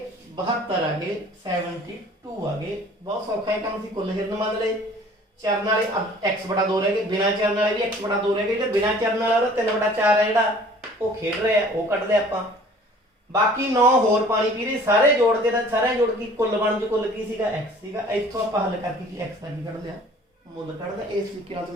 72 ਆ ਗਏ, 72 ਆ ਗਏ। ਬਹੁਤ ਸੌਖਾ ਇਹ ਕੰਮ ਸੀ। ਕੁੱਲ ਹਿਰਨ ਮੰਨ ਲਏ, ਚਰਨ ਵਾਲੇ x/2 ਰਹਿ ਗਏ, ਬਿਨਾਂ ਚਰਨ ਵਾਲੇ ਵੀ x/2 ਰਹਿ ਗਏ। ਜਿਹੜੇ ਬਿਨਾਂ ਚਰਨ ਵਾਲਾ ਉਹਦਾ 3/4 ਹੈ ਜਿਹੜਾ ਉਹ ਖੇਡ ਰਿਹਾ, ਉਹ ਕੱਢਦੇ ਆਪਾਂ। ਬਾਕੀ 9 ਹੋਰ ਪਾਣੀ ਪੀ ਰਹੇ, ਸਾਰੇ ਜੋੜਦੇ ਤਾਂ ਸਾਰੇ ਜੋੜ ਕੇ ਕੁੱਲ ਬਣ ਜੋ ਕੁੱਲ ਕੀ ਸੀਗਾ x ਸੀਗਾ। ਇੱਥੋਂ ਆਪਾਂ ਹੱਲ ਕਰਕੇ ਕੀ x ਦਾ ਕੀ ਕੱਢ ਲਿਆ? ਮੁੱਲ ਕੱਢਦਾ। ਇਸ ਤਰੀਕੇ ਨਾਲ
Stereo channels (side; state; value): both; normal; correlation 0.51